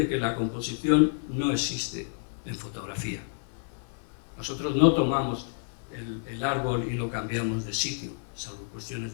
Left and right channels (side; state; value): right; silent; 58 dB below the other